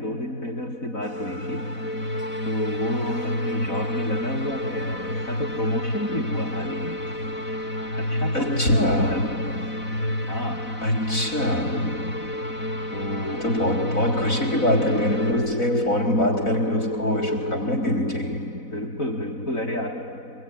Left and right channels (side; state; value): right; late; 4.0 ms